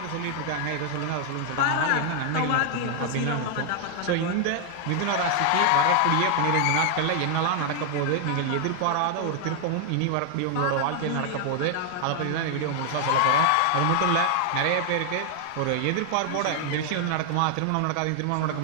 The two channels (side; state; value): both; different; correlation 0.00